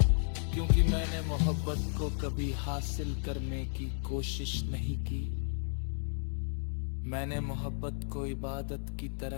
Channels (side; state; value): right; silent; digital silence